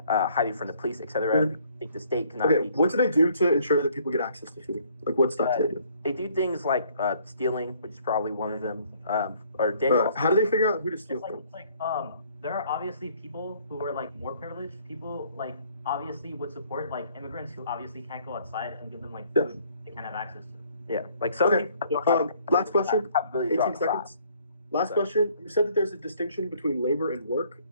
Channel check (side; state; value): both; inverted; correlation -0.61